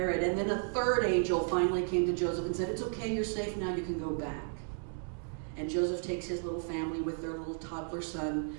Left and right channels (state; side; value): silent; left; 55 dB below the other